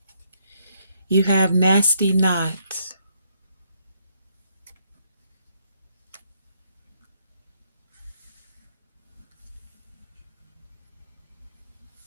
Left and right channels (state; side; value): inverted; both; correlation -0.73